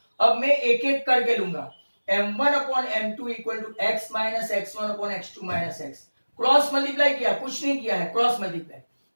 अब मैं एक एक करके लूंगा, M1 upon M2 equal to X minus X1 upon X2 minus X। Cross multiply किया, कुछ नहीं किया है, cross multiply,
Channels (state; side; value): inverted; both; correlation -1.00